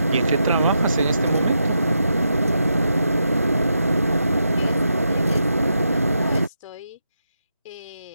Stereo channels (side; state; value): both; inverted; correlation -0.84